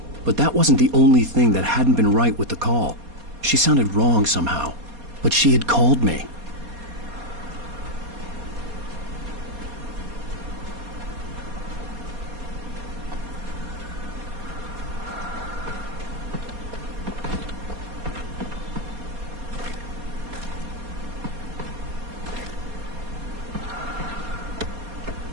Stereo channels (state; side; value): late; left; 4.2 ms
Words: but that wasn't the only thing that hadn't been right with the call. She sounded wrong somehow, but she had called me.